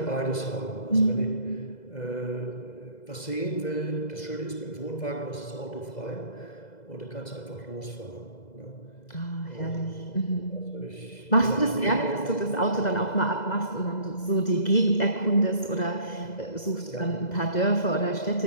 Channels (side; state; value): right; late; 2.0 ms